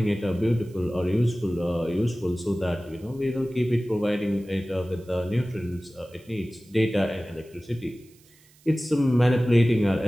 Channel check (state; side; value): noise; right; hiss, 29 dB below the sound